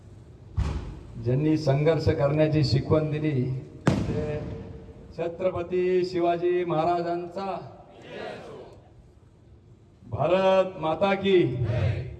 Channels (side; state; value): both; identical; correlation 1.00